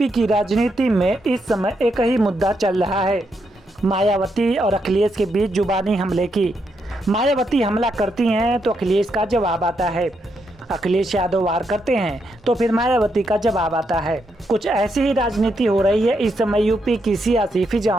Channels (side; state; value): both; normal; correlation 0.80